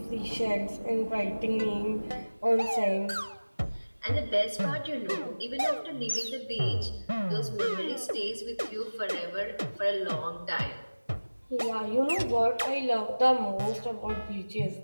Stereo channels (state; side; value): inverted; both; correlation -1.00